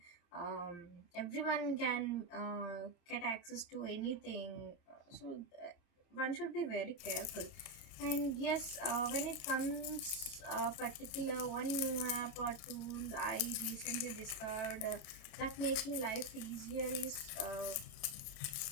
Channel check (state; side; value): late; right; 29 ms